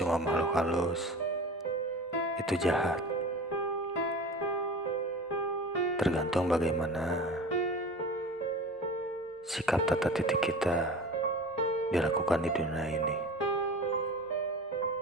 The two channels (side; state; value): both; normal; correlation 0.35